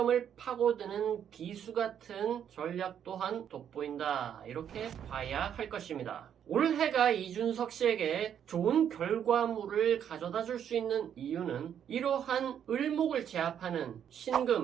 파고드는 비수 같은 전략 또한 돋보인다 이렇게 봐야 할 것입니다. 올해가 이준석 씨에게 좋은 결과물을 가져다 줄 수 있는 이유는 이러한 을목을 제압하는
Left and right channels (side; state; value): left; quieter; 9.0 dB